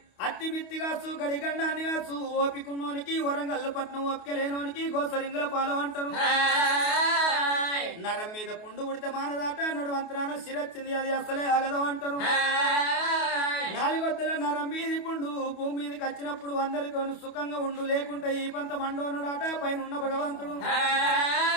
అత్తి మిత్తిగాసు గడిగండాన్ని కాసు, ఓపికున్నోనికి వరంగల్లు పట్నం ఓపిక లేనోనికి గోసరింగుల పాలు అంటారు. నరం మీద పుండు ఉడితే మానదాట, నడువంతరాన శిరొచ్చింది అది అసలే ఆగదు అంటారు. నాలుగొద్దుల నరం మీది పుండు భూమి మీదకి వచ్చినప్పుడు అందరితోనూ సుఖంగా ఉండు, లేకుంటే ఈ పంత మండోనడాట పైన ఉన్న భగవంతుడు.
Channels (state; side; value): late; right; 28 ms